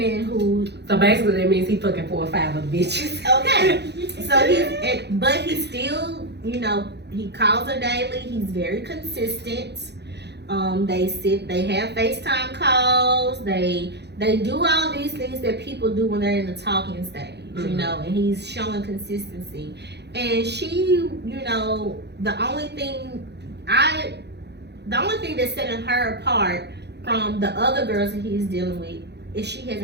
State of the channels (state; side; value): late; left; 0.49 ms